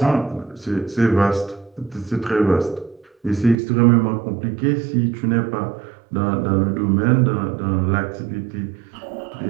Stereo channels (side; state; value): left; drops out; at 3.6 s